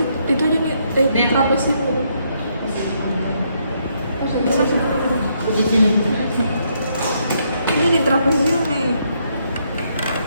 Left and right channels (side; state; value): both; inverted; correlation -0.74